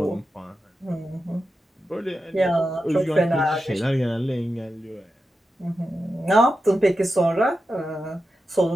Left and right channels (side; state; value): both; normal; correlation 0.90